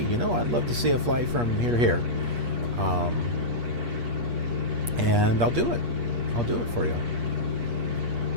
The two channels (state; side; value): late; left; 8.4 ms